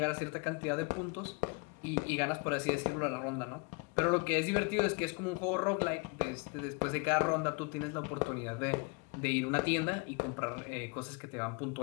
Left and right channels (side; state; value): right; quieter; 31.3 dB